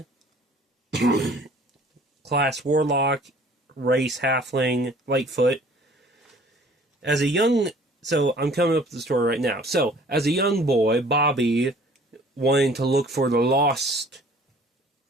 Class Warlock. Race Halfling. Lightfoot. So I'm coming up with the story right now. So, as a young boy, Bobby wanted to look for the lost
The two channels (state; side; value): normal; both; correlation 0.52